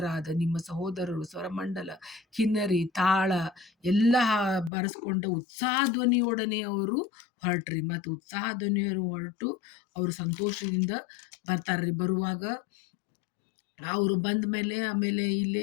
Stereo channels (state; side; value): drops out; right; at 4.7 s